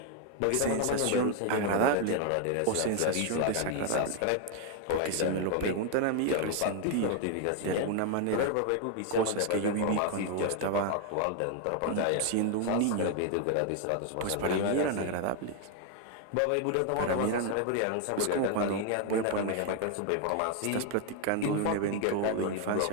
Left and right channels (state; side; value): different; both; correlation 0.00